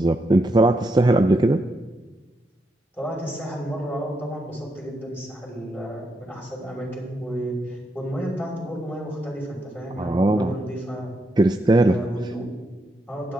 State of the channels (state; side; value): normal; both; correlation 0.81